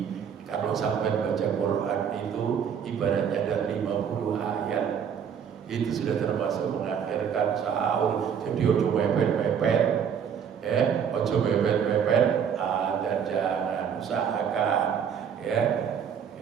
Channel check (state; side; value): quieter; left; 7.7 dB